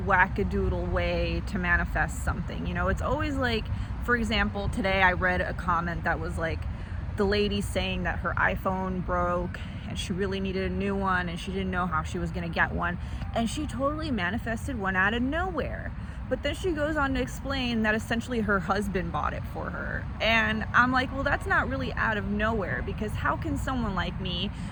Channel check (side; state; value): both; identical; correlation 1.00